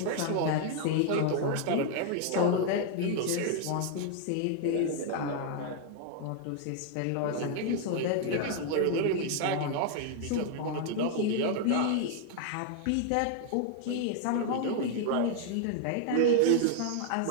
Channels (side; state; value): both; different; correlation 0.00